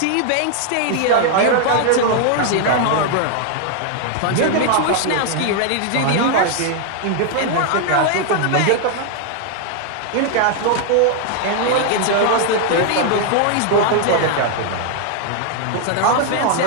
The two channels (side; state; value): both; different; correlation 0.00